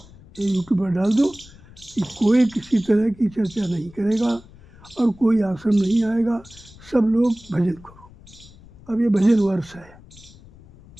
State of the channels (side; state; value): left; noise; rumble, 22 dB below the sound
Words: ये यूट्यूब पर डाल दो कि कोई किसी तरह की चर्चा नहीं करेगा और कोई आश्रम नहीं आएगा, सब लोग भजन करो। अब ये भजन वर्ष है,